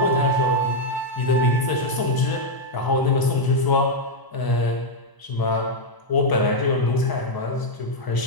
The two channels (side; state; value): right; late; 1.0 ms